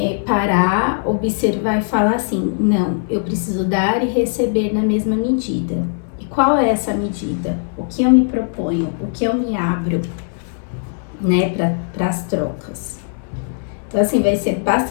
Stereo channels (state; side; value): silent; right; 66 dB below the other